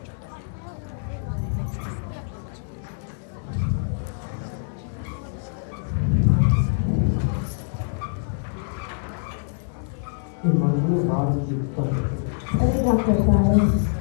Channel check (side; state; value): right; silent; digital silence